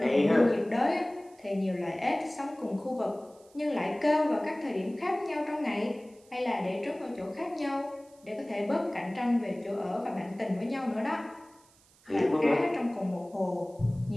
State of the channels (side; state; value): right; noise; hiss, 29 dB below the sound